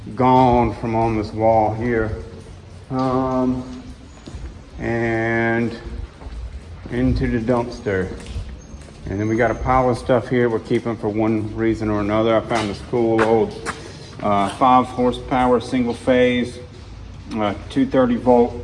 gone from on this wall here. And into the dumpster. And then we got a pile of stuff here we're keeping for one reason or another. I found this cool old 5 horsepower single phase 230 volt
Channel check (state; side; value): identical; both; correlation 1.00